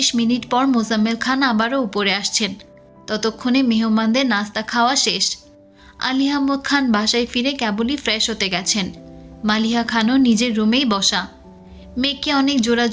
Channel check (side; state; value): both; identical; correlation 1.00